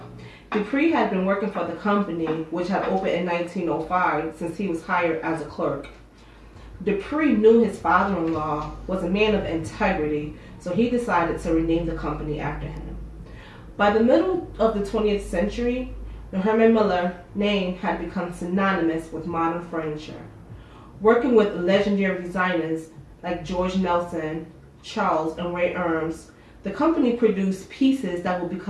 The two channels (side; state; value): both; identical; correlation 1.00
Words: Dupree had been working for the company, which had opened in 1905, since he was hired as a clerk. Dupree knew his father-in-law was a man of integrity, so he decided to rename the company after him. By the middle of the 20th century, the Herman Miller name had become synonymous with modern furniture. Working with legendary designers like George Nelson, Charles, and Ray Eames, the company produced pieces that will